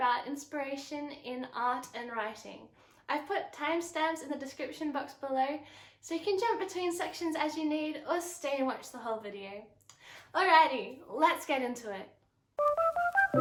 inspiration in art and writing. I've put timestamps in the description box below, so you can jump between sections as you need or stay and watch the whole video. Alrighty, let's get into it.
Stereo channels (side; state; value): both; identical; correlation 1.00